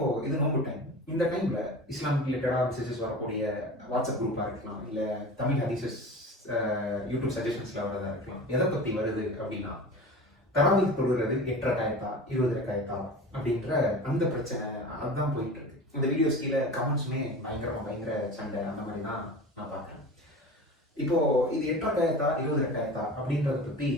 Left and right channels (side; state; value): both; normal; correlation 0.34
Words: இது நோம்பு டைம். இந்த டைம்ல இஸ்லாம் ரிலேட்டடா மெசேஜஸ் வரக்கூடிய வாட்ஸ்அப் குரூப்பா இருக்கலாம், இல்ல தமிழ் ஹதீஸஸ் யூடியூப் சஜஷன்ஸ்ல வரதா இருக்கலாம். எதை பத்தி வருது அப்படின்னா, தராவீஹ் தொழுகிறது 8 ரக்காயத்தா 20 ரக்காயத்தா அப்படின்ற அந்த பிரச்சனை அதுதான் போயிட்டு இருக்கு. இந்த வீடியோஸ் கீழே கமெண்ட்ஸுமே பயங்கர சண்டை அந்த மாதிரி தான் நான் பார்க்குறேன். இப்போ இது 8 ரக்காயத்தா 20 ரக்காயத்தா அப்படின்றத பத்தி